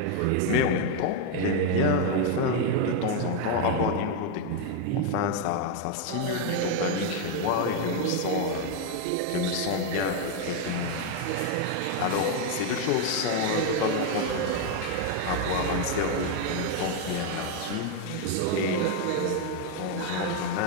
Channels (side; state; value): both; different; correlation 0.01